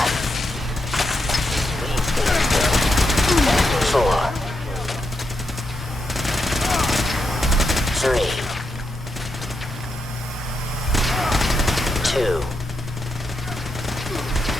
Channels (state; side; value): normal; both; correlation 0.83